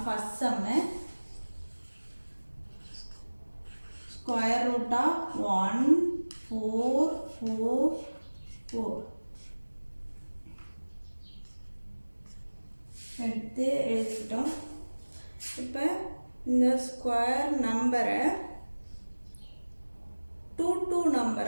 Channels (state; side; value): inverted; both; correlation -1.00